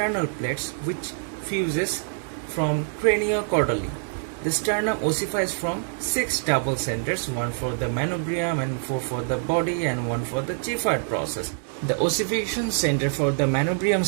plates, which fuses from craniocaudally. The sternum ossifies from 6 double centers, one for the manubrium and 4 for the body and 1 for the Giffard process. The ossification center for the manubrium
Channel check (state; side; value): silent; left; digital silence